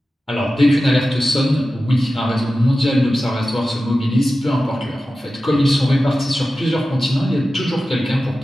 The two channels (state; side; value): normal; both; correlation 0.94